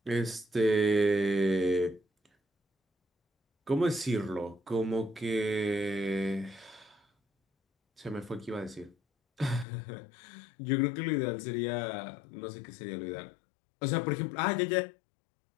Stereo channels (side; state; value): right; drops out; at 9.7 s